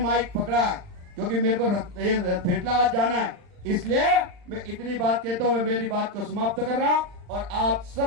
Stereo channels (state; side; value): late; left; 39 ms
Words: पकड़ा है, क्योंकि मेरे को पेटलावाद जाना है। इसलिए मैं इतनी बात कहता हूँ, मैं मेरी बात को समाप्त कर रहा हूँ और आप